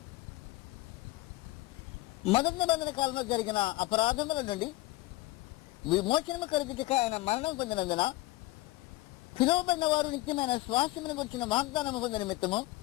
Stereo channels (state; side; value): quieter; right; 19.6 dB